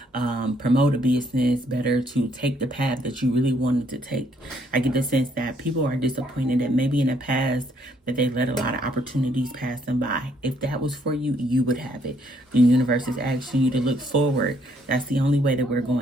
promote a business better, to take the path that you really wanted to take? I get the sense that people are disappointed that maybe in the past that they let a lot of opportunities pass them by. If that was for you, you would have it. The universe is asking you to look forward. That's the only way that we're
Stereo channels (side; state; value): both; normal; correlation 0.69